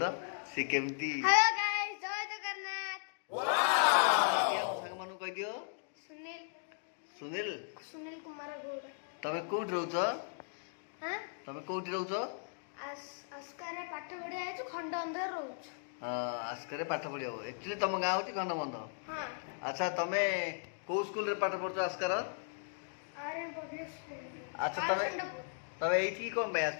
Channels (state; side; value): silent; right; digital silence